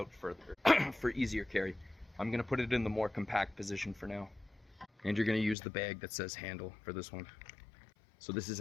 further for easier carry. I'm going to put it in the more compact position for now. And you're going to use the bag that says handle for this one. So this is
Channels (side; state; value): right; drops out; at 5.6 s